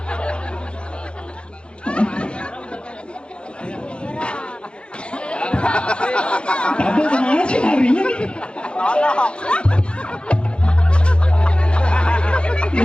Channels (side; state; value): right; late; 0.055 ms